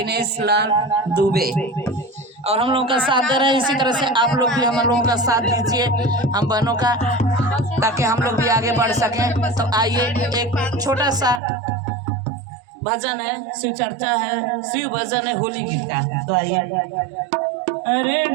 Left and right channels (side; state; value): left; drops out; at 11.4 s